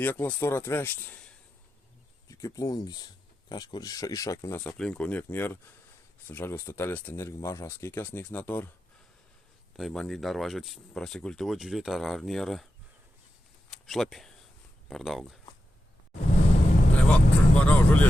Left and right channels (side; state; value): both; normal; correlation 0.90